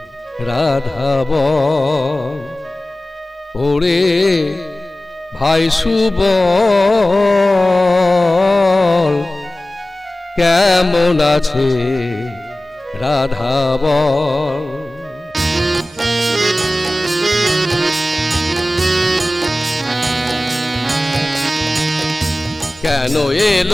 রাধা বল? ওরে ভাই সুবল, কেমন আছে রাধা বল? কেন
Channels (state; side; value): normal; both; correlation 0.97